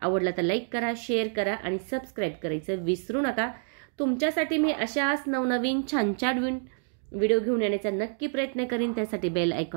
तर लाईक करा, शेअर करा आणि सबस्क्राईब करायचं विसरू नका. तुमच्यासाठी मी अशाच नवनवीन छान छान व्हिडिओ घेऊन येण्याचा नक्की प्रयत्न करीन. त्यासाठी बेल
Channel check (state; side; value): silent; left; 59 dB below the other